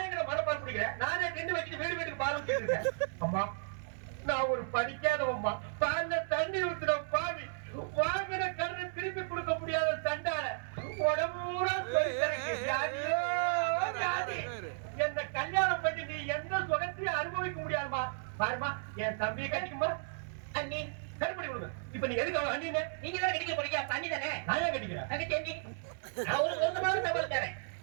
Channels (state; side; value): silent; left; 55 dB below the other